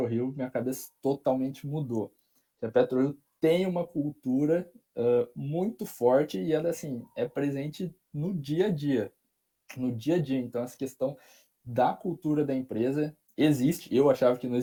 minha cabeça totalmente mudou. A PetroRio tem uma cultura muito forte e ela, assim, é presente no dia a dia. No dia a dia. Então, essa questão da cultura da empresa existe. Eu achava que não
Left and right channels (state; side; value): identical; both; correlation 1.00